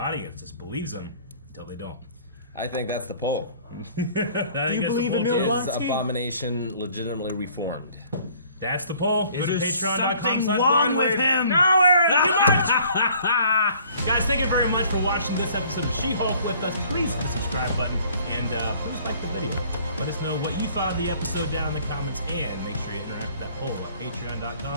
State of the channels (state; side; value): inverted; both; correlation -0.55